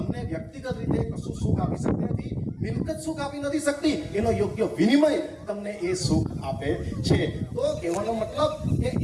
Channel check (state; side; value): identical; both; correlation 1.00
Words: વ્યક્તિગત રીતે કશું સુખ આપી શકતી નથી. મિલકત સુખ આપી નથી શકતી, એનો યોગ્ય વિનિમય તમને એ સુખ આપે છે. તો કહેવાનો મતલબ કે